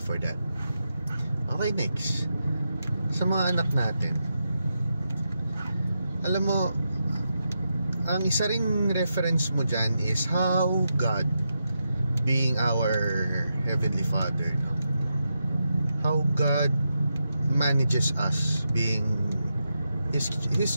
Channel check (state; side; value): inverted; both; correlation -0.86